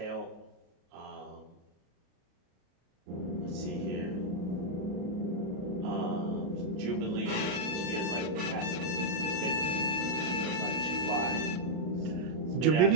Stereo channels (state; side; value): late; left; 33 ms